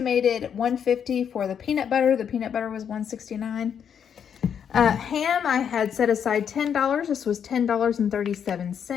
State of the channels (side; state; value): right; quieter; 8.0 dB